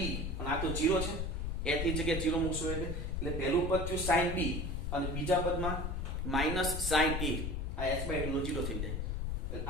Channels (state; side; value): noise; left; rumble, 2 dB below the sound